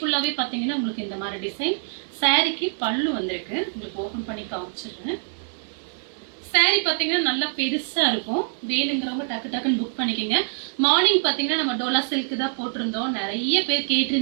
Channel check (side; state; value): left; silent; 62 dB below the other